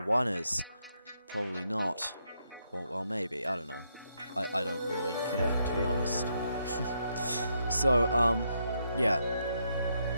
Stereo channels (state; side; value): inverted; both; correlation -0.78